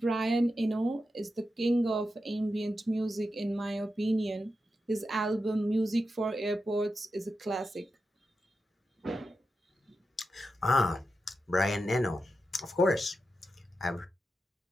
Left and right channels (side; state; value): both; normal; correlation 0.89